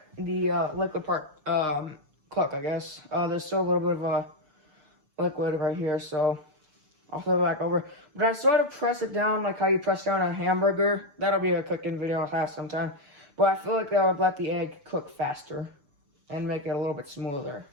the liquid part cook, I guess. There's still a little bit of a liquid right here, so I'll flip it back over. But I sort of press it down like how you press down a hamburger. That'll be a cooking video I'll have sometime. But I feel like that would let the egg cook faster and make it a little bit smoother.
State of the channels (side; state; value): left; late; 6.8 ms